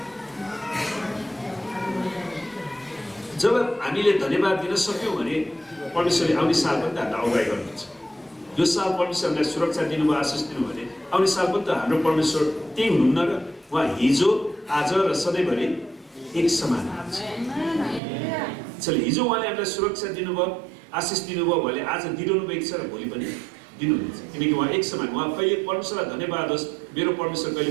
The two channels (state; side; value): drops out; left; at 18.0 s